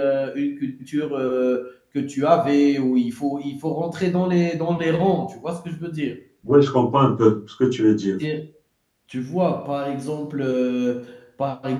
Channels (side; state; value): both; identical; correlation 1.00